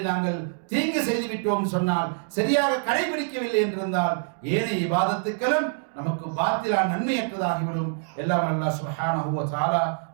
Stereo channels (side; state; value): left; silent; digital silence